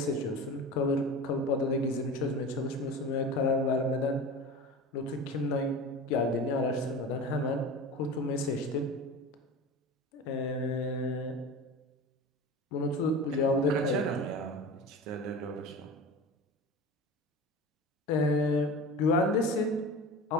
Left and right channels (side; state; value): both; normal; correlation 0.32